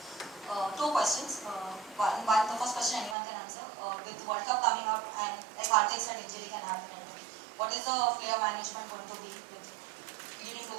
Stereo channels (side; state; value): left; drops out; at 3.2 s